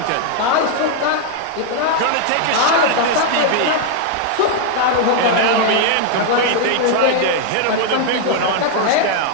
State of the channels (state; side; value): different; both; correlation 0.00